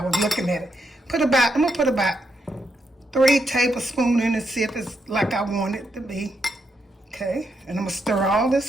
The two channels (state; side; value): normal; both; correlation 0.81